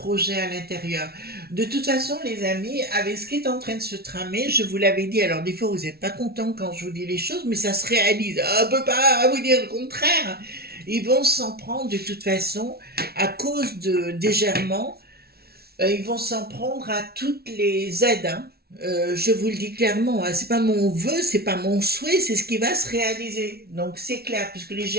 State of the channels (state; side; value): late; left; 0.45 ms